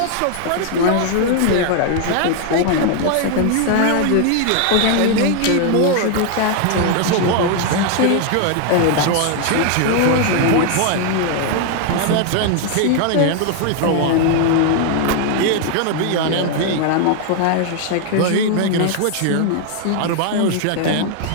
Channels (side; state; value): both; different; correlation 0.00